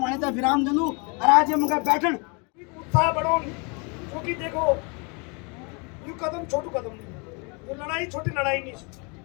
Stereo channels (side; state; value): right; quieter; 32.6 dB